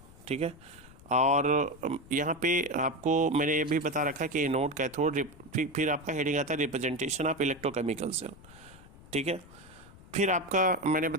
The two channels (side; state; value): left; noise; rumble, 21 dB below the sound